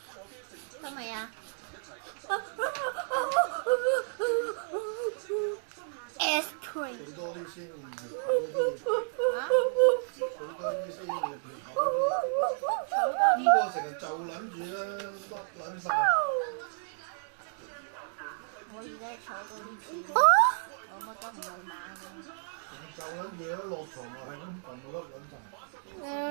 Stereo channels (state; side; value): silent; left; digital silence